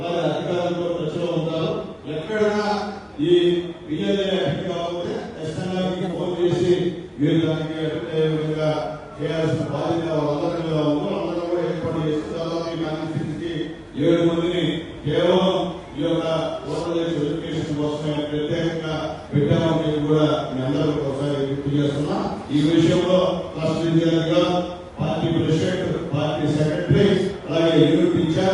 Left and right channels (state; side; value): identical; both; correlation 1.00